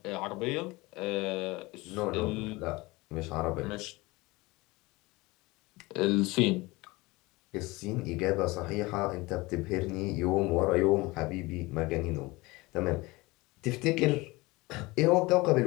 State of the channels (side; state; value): right; quieter; 22.4 dB